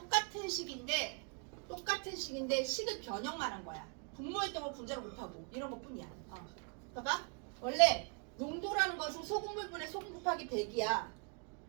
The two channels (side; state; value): left; quieter; 38.7 dB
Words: 식인데 식을 변형만 한 거야. 분모했던 분자를 못하고 이런 것뿐이야. 봐봐. 원래 농도라는 것은 소금물분의 소금 곱하기 100이야.